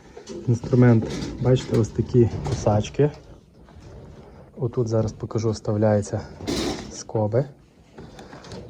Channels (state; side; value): identical; both; correlation 1.00